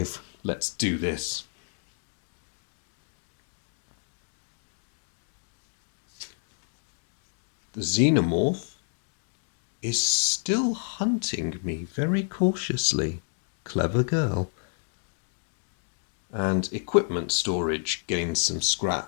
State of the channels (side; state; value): right; silent; digital silence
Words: Let's do this. The Xenomorph is still hunting me very cautiously. Clever girl. And equipment storage gains some